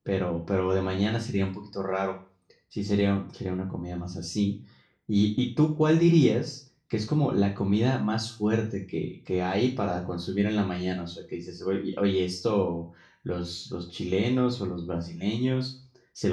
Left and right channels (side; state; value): both; identical; correlation 1.00